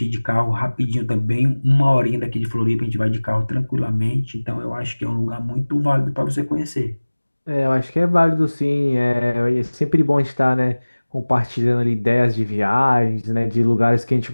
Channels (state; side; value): inverted; both; correlation -1.00